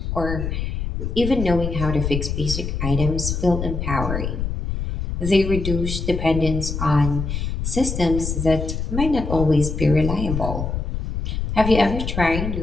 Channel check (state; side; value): noise; left; rumble, 3 dB below the sound